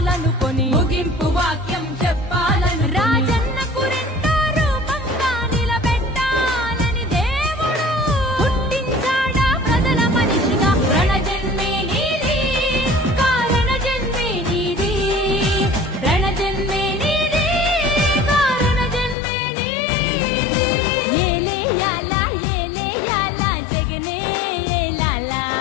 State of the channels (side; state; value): right; drops out; at 19.2 s